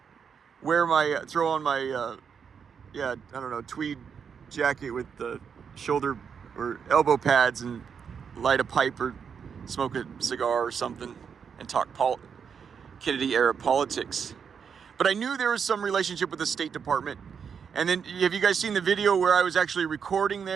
wear throw on my, tweed jacket with the shoulder or elbow pads and light a pipe or smoke a cigar or something and talk Kennedy-era politics. But I knew there was some relationship with the State Department. And then, have you guys seen the video where I was actually recording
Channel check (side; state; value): left; quieter; 6.8 dB